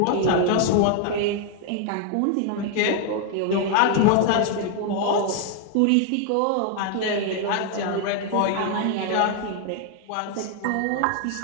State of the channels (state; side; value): different; both; correlation 0.00